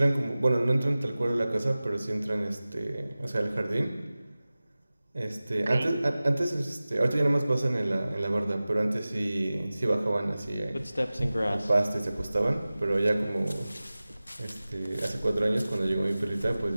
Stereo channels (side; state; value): both; inverted; correlation -0.97